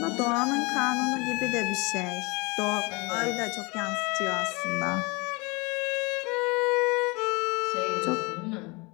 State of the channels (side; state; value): right; quieter; 27.1 dB